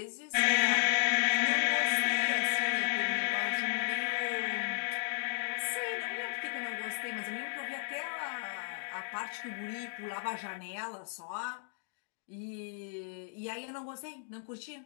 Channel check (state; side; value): silent; right; digital silence